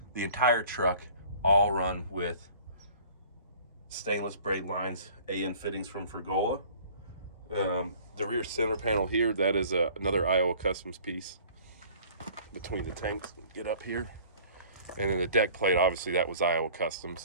The entire truck, all run with stainless braid lines, AN fittings from Fergola. The rear center panel here, that is another Iowa Customs piece between the tanks. Get up here. And then the deck plate, obviously that was Iowa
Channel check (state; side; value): inverted; both; correlation -0.50